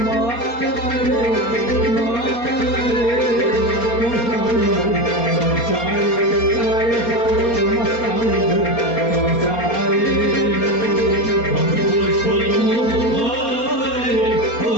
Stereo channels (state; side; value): late; right; 4.3 ms